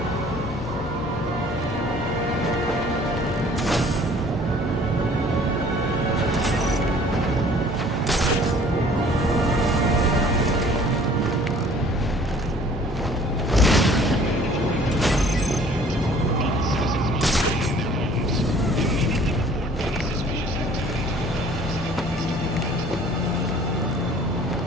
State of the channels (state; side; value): normal; both; correlation 0.53